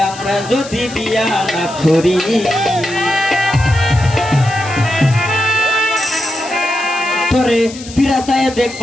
আমরা যদি বিয়া না করি তোরে পিরাসায়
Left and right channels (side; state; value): left; noise; hiss, 15 dB below the sound